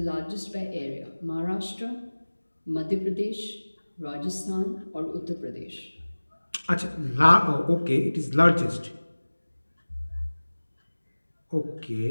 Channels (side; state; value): both; inverted; correlation -1.00